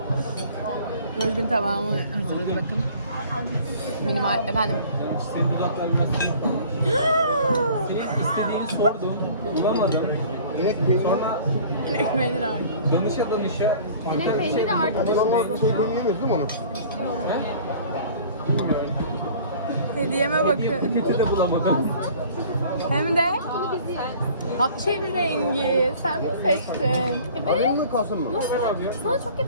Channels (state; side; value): inverted; both; correlation -0.48